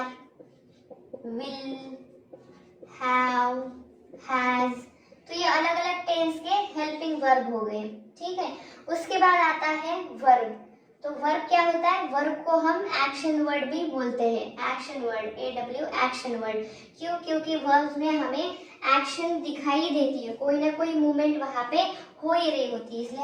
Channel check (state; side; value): identical; both; correlation 1.00